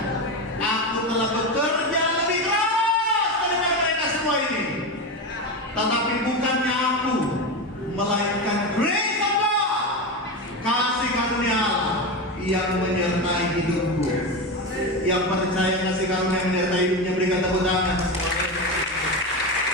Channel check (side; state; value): both; normal; correlation 0.18